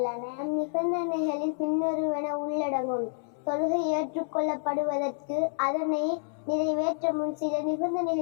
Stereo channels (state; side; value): silent; right; 59 dB below the other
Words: நிபந்தனைகளில் பின்வருவன உள்ளடங்கும். தொழுகை ஏற்றுக்கொள்ளப்படுவதற்கு அதனை நிறைவேற்ற முன் சில